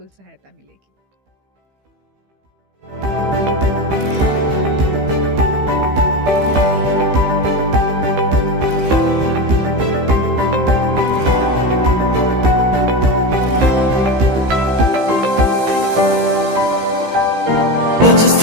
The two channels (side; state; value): left; late; 15 ms